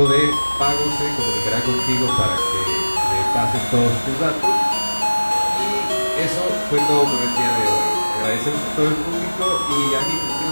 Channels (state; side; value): inverted; both; correlation -1.00